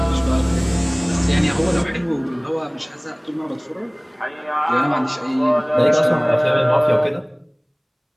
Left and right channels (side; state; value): both; identical; correlation 1.00